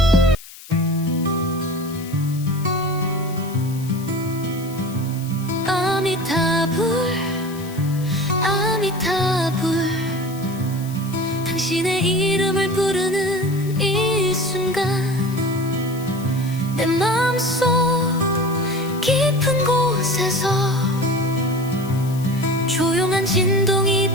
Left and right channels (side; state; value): left; noise; hiss, 18 dB below the sound